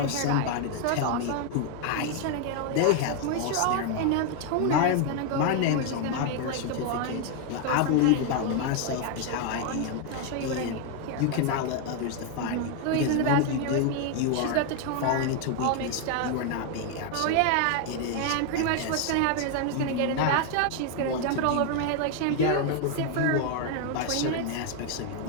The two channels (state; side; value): different; both; correlation 0.00